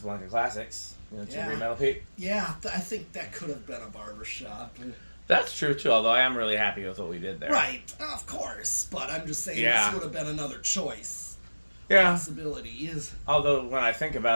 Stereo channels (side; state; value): both; inverted; correlation -1.00